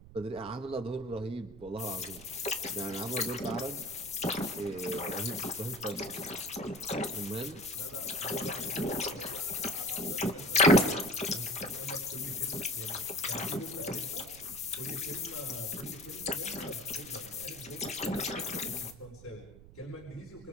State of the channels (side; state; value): right; noise; rumble, 18 dB below the sound